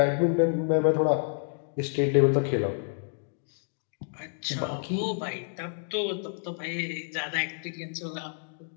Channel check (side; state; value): right; silent; digital silence